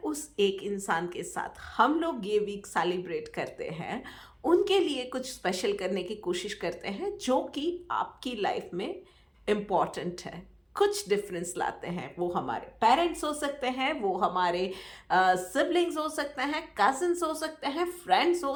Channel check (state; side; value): identical; both; correlation 1.00